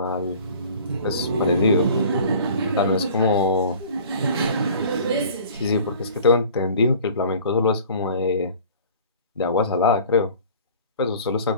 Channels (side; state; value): both; inverted; correlation -0.46